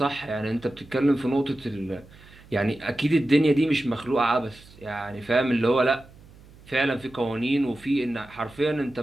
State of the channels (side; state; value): right; noise; hum, 23 dB below the sound